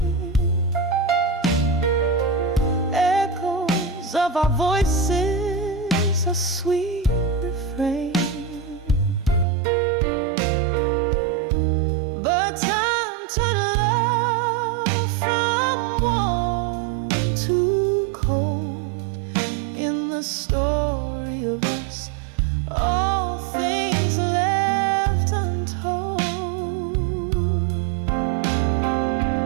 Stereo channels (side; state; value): left; drops out; at 9.5 s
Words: echoes of our voices, a sweet refrain. But time turned love from warm to cold. In the story of us, all things left untold.